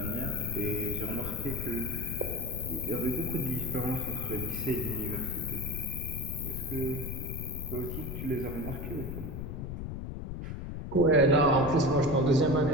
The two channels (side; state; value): left; noise; rumble, 6 dB below the sound